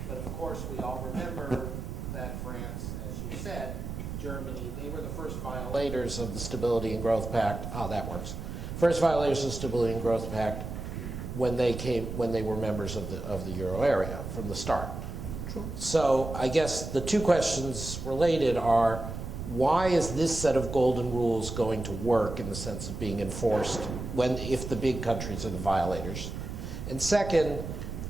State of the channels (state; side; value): noise; right; rumble, 7 dB below the sound